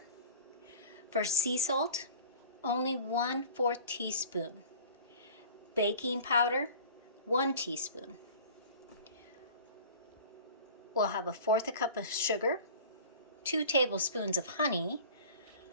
For sea salt, only 1/4 teaspoon. Baking powder, 1 teaspoon. We'll have 1/4 cup of sugar, 2 tablespoons of honey,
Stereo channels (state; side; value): inverted; both; correlation -0.42